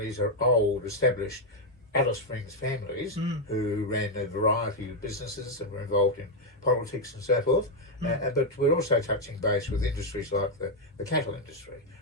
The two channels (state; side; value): normal; both; correlation 0.01